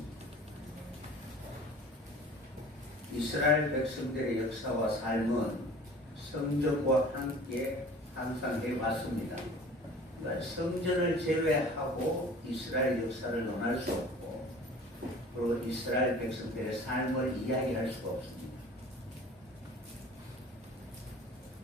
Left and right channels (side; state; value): both; normal; correlation 0.44